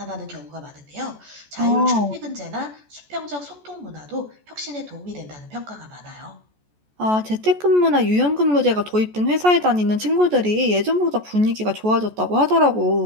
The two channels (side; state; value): left; late; 14 ms